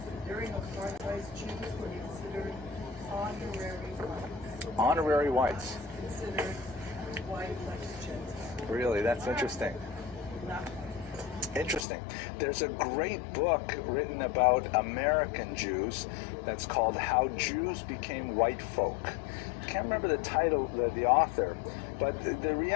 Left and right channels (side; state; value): right; drops out; at 11.9 s